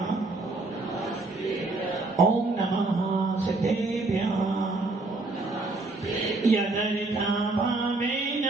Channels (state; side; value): quieter; left; 3.2 dB